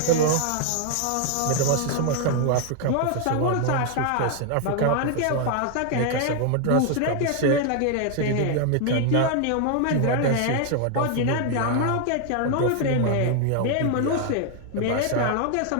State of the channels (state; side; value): different; both; correlation 0.00